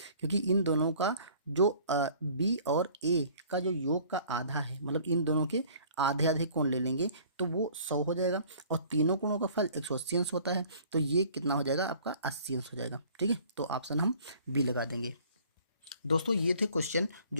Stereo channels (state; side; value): inverted; both; correlation -0.53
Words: क्योंकि इन दोनों का जो बी और ए का जो योग का आधा है, मतलब इन दोनों के आधे आधे कोण ले लेंगे तो वो 100 हो जाएगा, और तीनों कोणों का फल 180 अंश होता है, तो ये कितना हो जाएगा आपका 80 अंश हो जाएगा। ठीक है, तो ऑप्शन हम बी लगा देंगे। दोस्तों ये थे क्वेश्चन